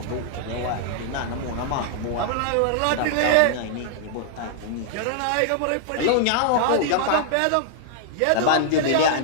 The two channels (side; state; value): both; different; correlation -0.01